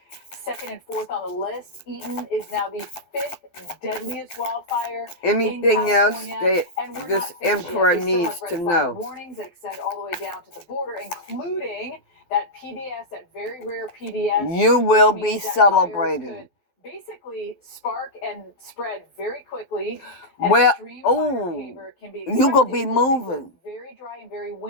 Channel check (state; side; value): late; right; 12 ms